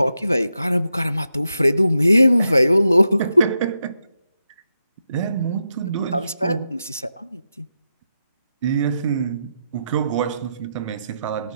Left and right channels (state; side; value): inverted; both; correlation -0.86